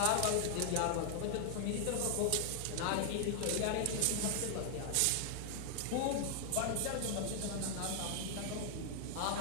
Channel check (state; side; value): different; both; correlation 0.00